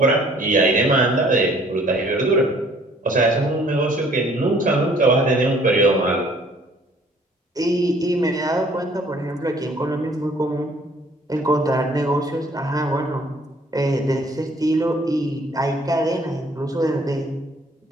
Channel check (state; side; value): normal; both; correlation 0.58